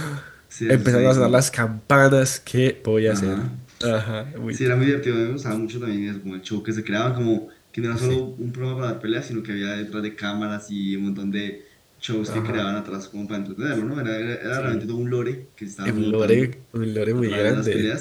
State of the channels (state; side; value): identical; both; correlation 1.00